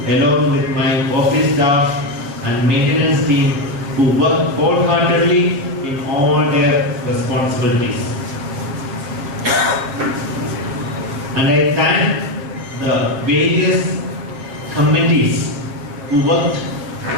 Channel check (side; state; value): left; late; 7.3 ms